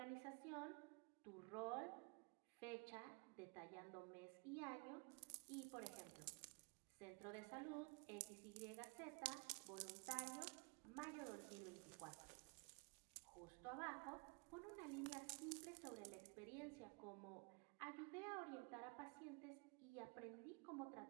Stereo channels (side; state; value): left; quieter; 31.5 dB